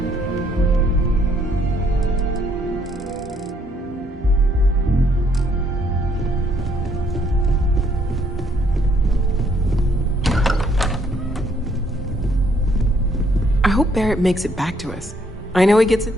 I hope Barrett makes it back to us. I know he gets it.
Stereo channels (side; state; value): both; normal; correlation 0.68